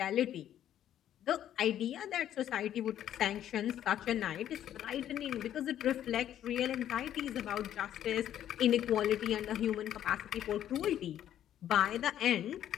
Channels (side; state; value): right; quieter; 11.0 dB